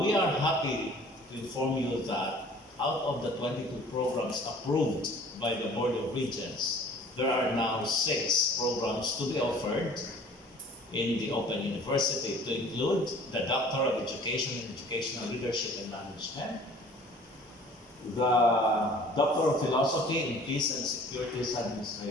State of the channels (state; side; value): normal; both; correlation 0.49